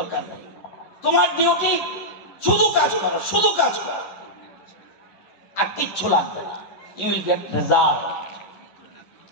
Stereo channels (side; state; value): right; late; 11 ms